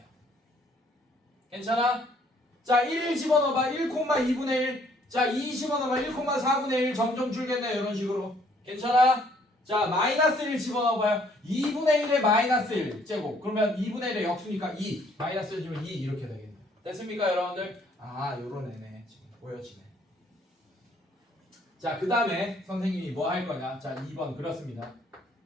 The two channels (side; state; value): both; normal; correlation 0.63